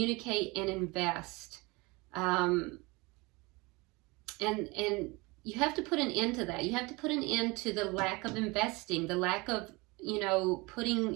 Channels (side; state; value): left; quieter; 25.1 dB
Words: and invest. And you have to put an end to that. You have to put an end to the lack of investing, the lack of, you know,